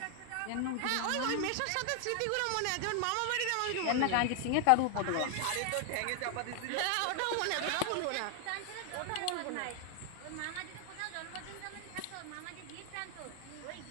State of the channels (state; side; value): different; both; correlation 0.00